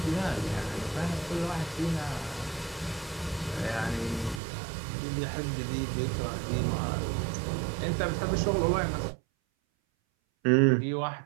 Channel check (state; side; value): drops out; left; at 4.4 s